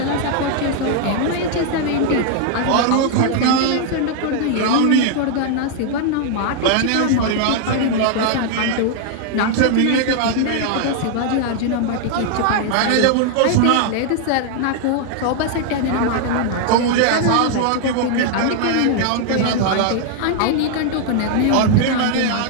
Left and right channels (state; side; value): different; both; correlation 0.00